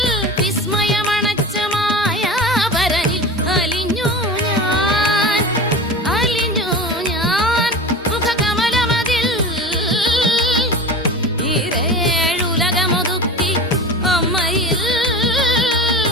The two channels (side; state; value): both; normal; correlation 0.31